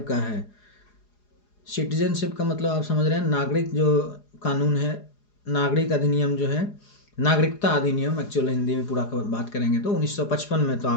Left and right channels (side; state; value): right; late; 4.9 ms